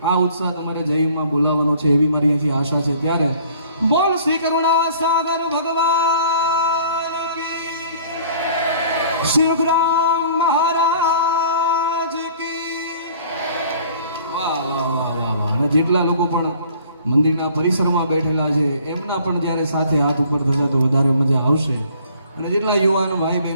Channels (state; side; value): inverted; both; correlation -0.53